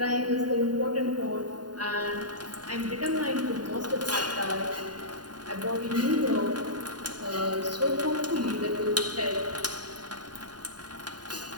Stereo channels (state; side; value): late; left; 0.70 ms